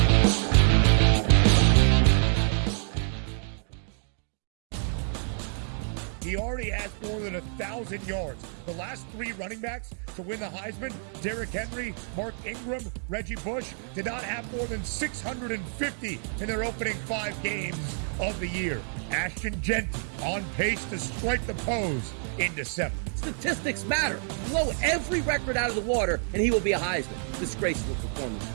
He already has more than 1,000 yards. The last three running backs to win the Heisman, Derrick Henry, Mark Ingram, Reggie Bush, did not have more than 650 in their opening 5 games of the year. Ashton Genty on pace to strike the pose in December. Statistics matter. Blow every record out of the water, and he will be a Heisman. Disgraceful performance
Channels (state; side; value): silent; left; 60 dB below the other